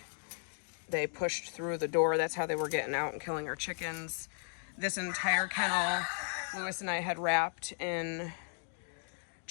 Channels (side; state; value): right; silent; 54 dB below the other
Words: they pushed through the door. That's how they were getting out and killing our chickens. This entire kennel, Lewis and I had wrapped in